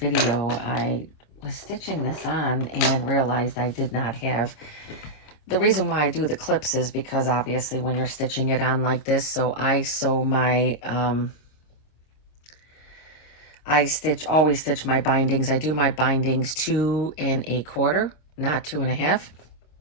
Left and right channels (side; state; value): right; late; 26 ms